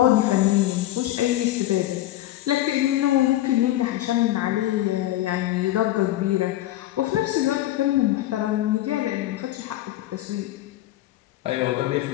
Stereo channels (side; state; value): right; quieter; 14.8 dB